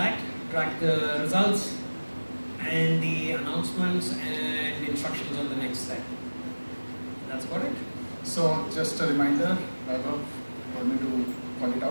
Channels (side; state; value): both; inverted; correlation -1.00